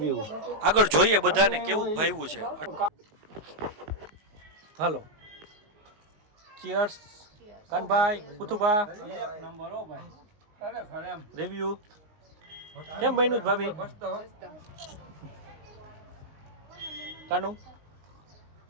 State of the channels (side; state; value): left; late; 19 ms